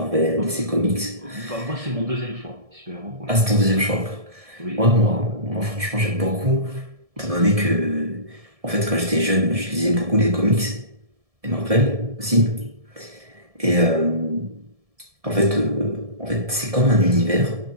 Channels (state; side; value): late; left; 1.7 ms